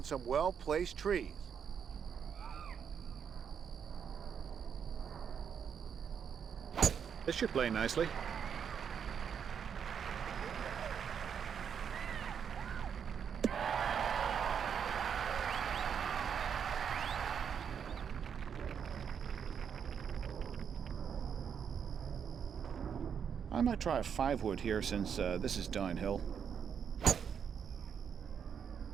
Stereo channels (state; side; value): quieter; left; 7.4 dB